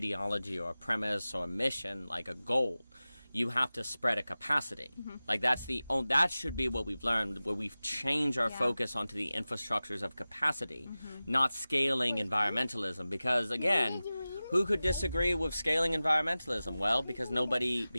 or a premise or a mission like a goal. You have to spread a capacity. Mm-hmm. Like, that should be what we've learned, where we've changed our focus onto the infrastructures of capacity, not scaling environmentalism. Because, again, who could disagree with scaling environmentalism? Well, because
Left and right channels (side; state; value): both; inverted; correlation -0.96